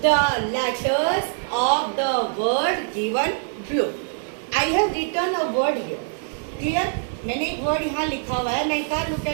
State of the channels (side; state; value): left; silent; digital silence